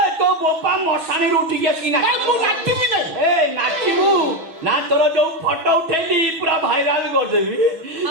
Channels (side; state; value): left; late; 6.0 ms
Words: ତୋ ବୋପା ମଶାଣିରୁ ଉଠିକି ଆସିକି ମୁଁ ନାଚିବି ନାହିଁ ଏ ନାଚିବୁ ନା ତୋର ଯୋଉ ଫଟୋ ଉଠେଇଲି ପୁରା ଭାଇରାଲ କରିଦେବି